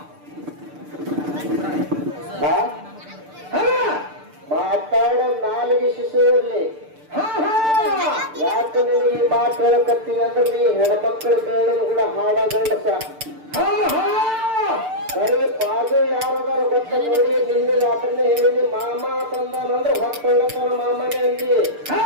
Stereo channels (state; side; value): late; left; 6.7 ms